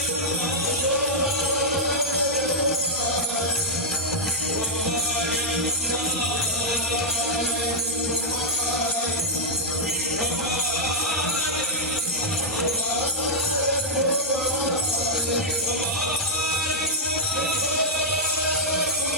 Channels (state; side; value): normal; both; correlation -0.05